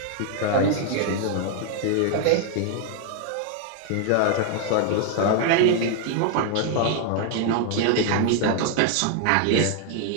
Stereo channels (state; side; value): different; both; correlation 0.00